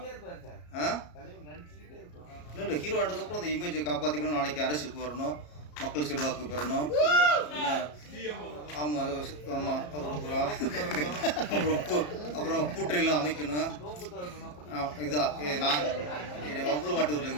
இல்லை ஹீரோ ஆனதுக்கப்புறம் அந்த இமேஜை காப்பாற்றிக்கணும். நாளைக்கு அரசியலுக்கு வரணும், மக்கள் செல்வாக்கு பெறணும். ஆமாம் ஆமாம். அப்புறம் கூட்டணிலாம் அமைக்கணும். இதுதான் நான் என்னை வம்புல மாட்டூரில்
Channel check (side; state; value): right; late; 34 ms